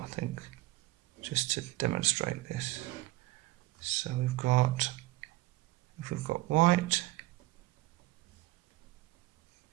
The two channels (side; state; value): left; quieter; 18.3 dB